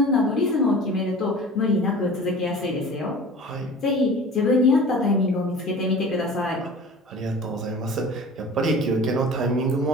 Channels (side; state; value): both; normal; correlation 0.40